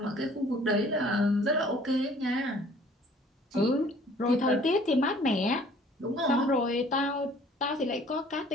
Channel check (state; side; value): normal; both; correlation 0.54